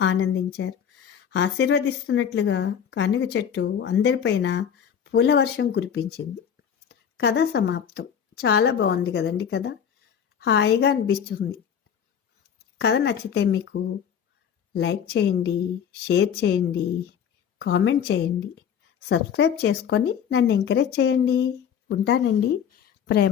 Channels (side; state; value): right; quieter; 8.2 dB